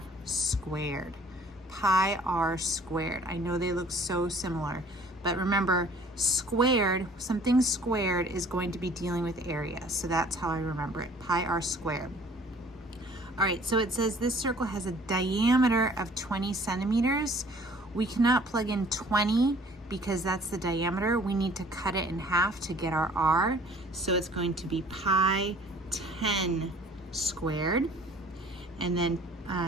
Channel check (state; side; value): normal; both; correlation 0.53